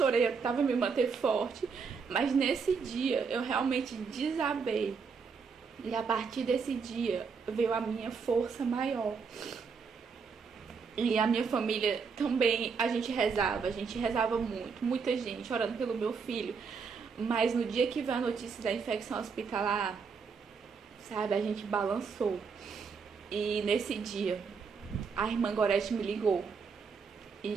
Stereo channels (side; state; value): left; quieter; 5.6 dB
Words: eu tava me manter forte, mas nesse dia eu realmente desabei. E a partir desse dia veio a minha força maior. E a minha família também, a gente rezava muito, muita gente orando pelo meu filho. Mas no dia que veio a notícia da infecção hospitalar, sabe, a gente balançou. E nesse dia, a irmã Gorete me ligou.